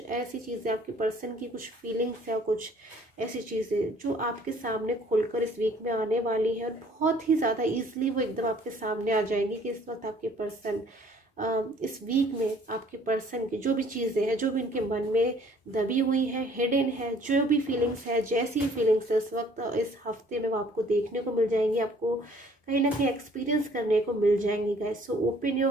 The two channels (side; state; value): both; normal; correlation 0.57